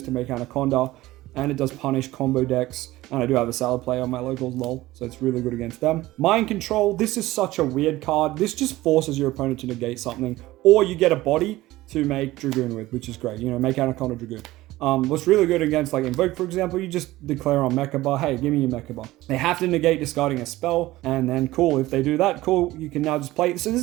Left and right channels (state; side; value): quieter; left; 17.4 dB